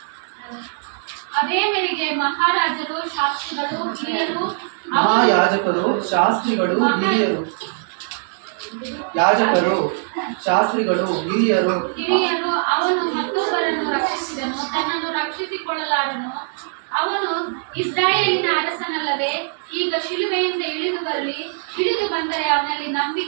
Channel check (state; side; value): silent; left; digital silence